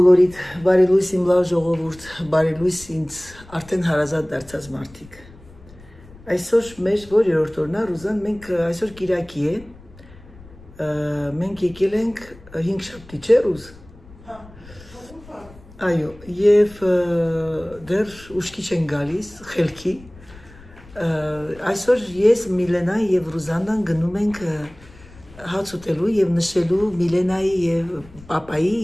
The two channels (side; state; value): left; noise; rumble, 22 dB below the sound